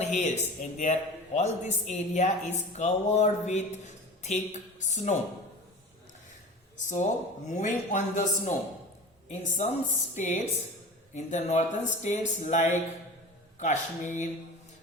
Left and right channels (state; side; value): normal; both; correlation 0.35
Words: and all this area is covered with thick snow. So moving on the snow, in some states, in the northern states like Kashmir,